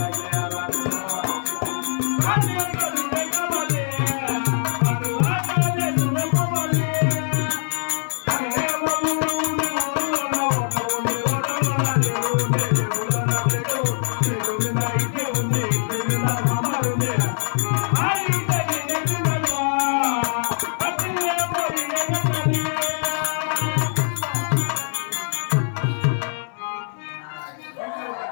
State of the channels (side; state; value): right; silent; 60 dB below the other